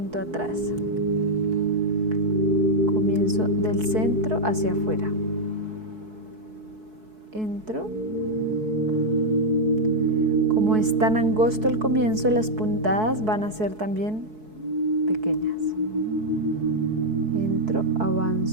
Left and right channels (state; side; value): late; left; 4.6 ms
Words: atrás. Comienzo del centro hacia afuera. Entro. Como es tan angosto el comienzo, las puntadas van a ser también pequeñas. Entro,